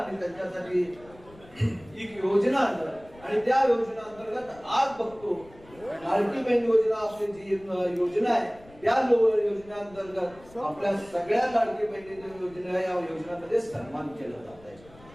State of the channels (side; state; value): left; noise; rumble, 23 dB below the sound